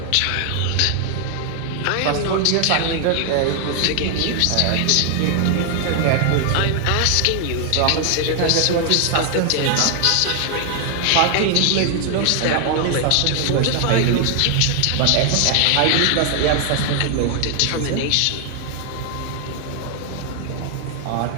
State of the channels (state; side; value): different; both; correlation 0.00